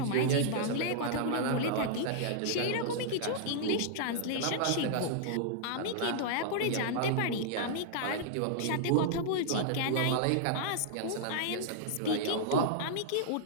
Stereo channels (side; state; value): both; different; correlation -0.01